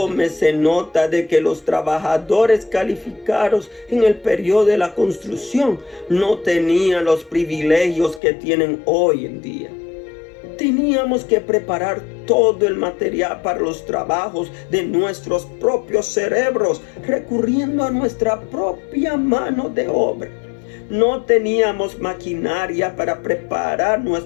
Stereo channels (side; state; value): right; drops out; at 8.2 s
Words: nota de que los trabajadores calificados en el periodo de la construcción no tenían los privilegios que tienen hoy en día. Teníamos que preparar todo el material para los trabajos de nuestros propios cerebros, recurriendo a nuestra propia mano de obra. No teníamos maquinaria para preparar